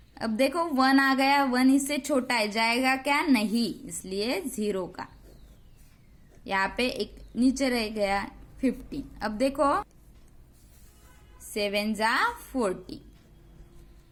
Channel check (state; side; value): identical; both; correlation 1.00